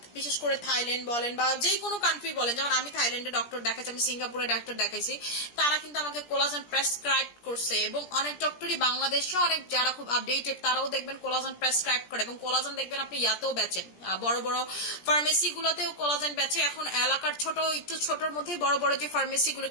বিশেষ করে থাইল্যান্ড বলেন বা যে কোনো কান্ট্রি বলেন, যেমন আমি থাইল্যান্ডে ডক্টর দেখাচ্ছি, আমি সিঙ্গাপুরে ডক্টর দেখাইছি, তারা কিন্তু আমাকে কোলাজেন প্রেসক্রাইব করছে। এবং অনেক ডক্টরই বাংলাদেশে অনেক যারা খুব আপডেটেড তারাও দেখবেন কোলাজেন প্রেসক্রাইব করে, এবং কোলাজেন দেখবেন আপনি ইয়াতেও বেচেন, বড় বড় ফার্মেসি গুলোতেও কোলাজেন বেচে। এখন এলাকার ছোট একটু ছোটর মধ্যেই বড় বড় যে ফার্মেসি গুলো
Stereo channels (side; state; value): right; late; 17 ms